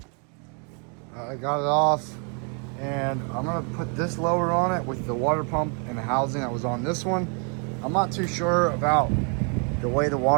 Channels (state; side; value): quieter; left; 38.5 dB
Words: I got it off, and I'm gonna put this lower on it with the water pump and the housing that was on this one. I'm not too sure about the way the